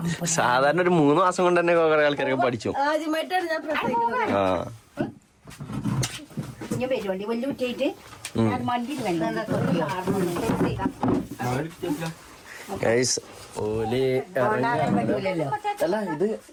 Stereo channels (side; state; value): both; identical; correlation 1.00